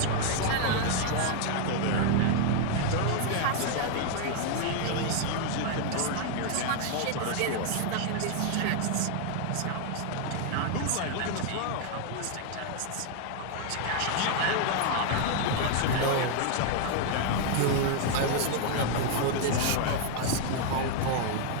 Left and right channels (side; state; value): both; different; correlation 0.00